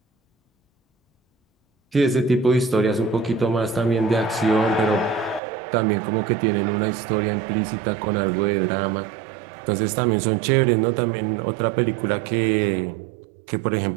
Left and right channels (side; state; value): left; drops out; at 5.4 s